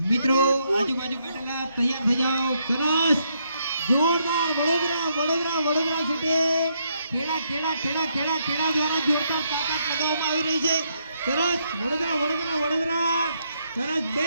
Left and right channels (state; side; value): inverted; both; correlation -0.76